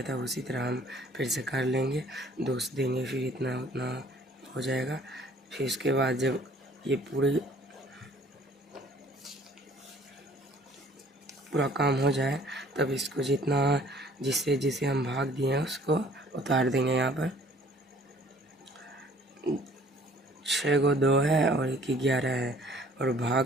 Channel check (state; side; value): normal; both; correlation 0.55